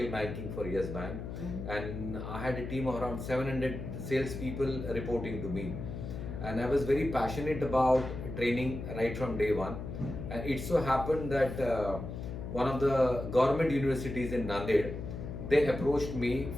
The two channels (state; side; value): noise; left; hum, 7 dB below the sound